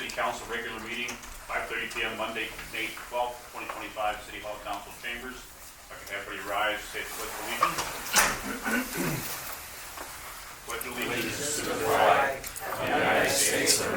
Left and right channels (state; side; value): identical; both; correlation 1.00